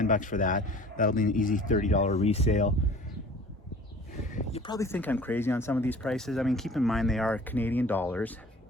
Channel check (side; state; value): both; normal; correlation 0.46